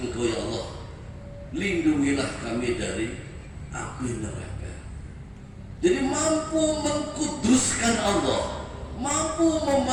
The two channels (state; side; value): identical; both; correlation 1.00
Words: Engkau ya Allah, lindungilah kami dari api neraka. Jadi mampu mengkuduskan Allah, mampu